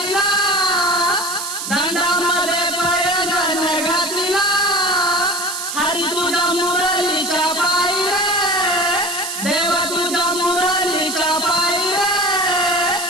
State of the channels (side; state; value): right; noise; hiss, 5 dB below the sound